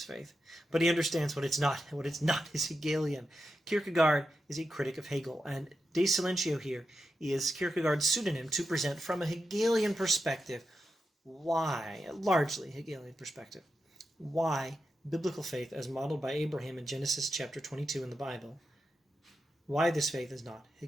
faith, but he understands what it's not, and what it's not is Hegelian. Kierkegaard is a critic of Hegel, and de Silentio here is Kierkegaard's pseudonym to present from a Hegelian perspective why, largely Hegelian perspective, why biblical faith as modeled by Abraham in Genesis chapter 22 in the Bible, why this faith is not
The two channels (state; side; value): normal; both; correlation 0.88